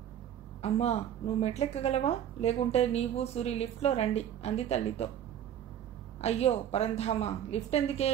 అమ్మా నువ్వు మెట్లెక్కగలవా? లేకుంటే నీవు సూరి లిఫ్ట్లో రండి అంది తల్లితో. అయ్యో పరంధామా, లిఫ్ట్ ఎందుకే?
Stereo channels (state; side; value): quieter; left; 10.2 dB